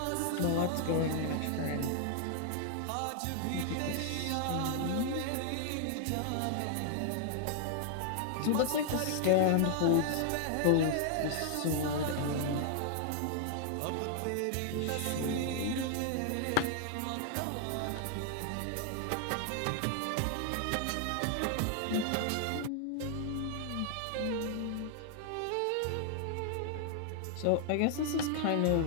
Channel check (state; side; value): different; both; correlation 0.00